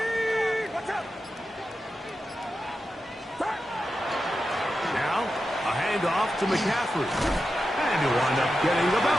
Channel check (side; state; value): both; normal; correlation 0.90